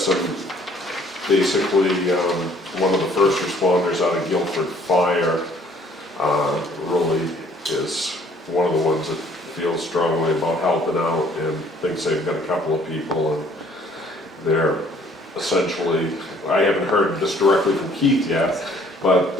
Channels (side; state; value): both; normal; correlation 0.59